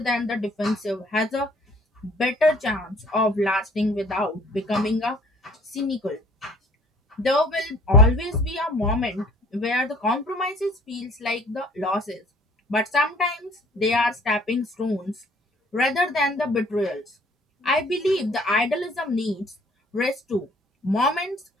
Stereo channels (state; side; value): normal; both; correlation 0.55